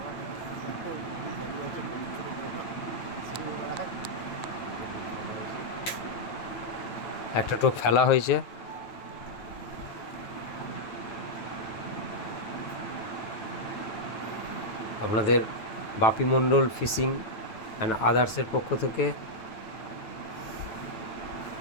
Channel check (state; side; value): late; right; 9.2 ms